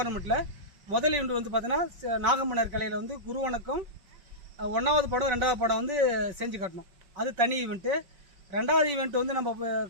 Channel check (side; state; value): left; late; 5.5 ms